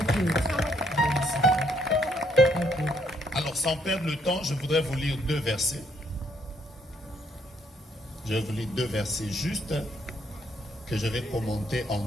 you. Thank you. Alors, sans perdre le temps, je voudrais vous lire 2 versets. Je vais vous lire 2 versets justes que je vais commenter en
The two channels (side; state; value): both; normal; correlation 0.71